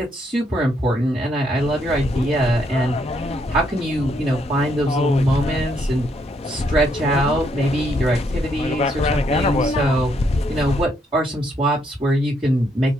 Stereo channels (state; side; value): normal; both; correlation 0.74